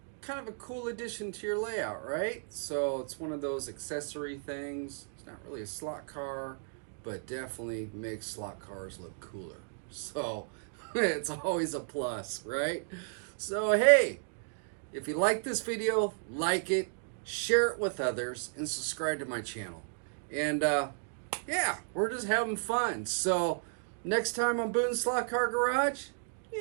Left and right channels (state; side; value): silent; left; digital silence